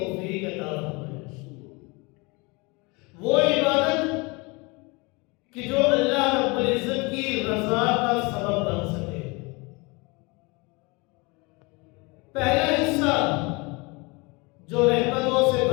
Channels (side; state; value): right; quieter; 27.3 dB